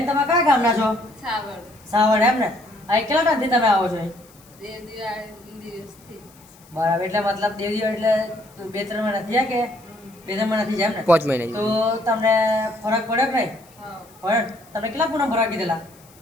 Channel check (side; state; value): left; noise; hiss, 27 dB below the sound